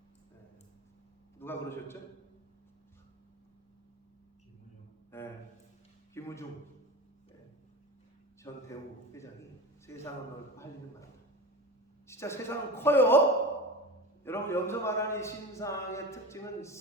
누가 그러셨죠? 김우중 전 대우 회장이 세상은 넓고 할 일은 많다. 진짜 세상은 커요. 여러분, 여기서 말하는 이 신상의 특징은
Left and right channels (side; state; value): both; normal; correlation 0.28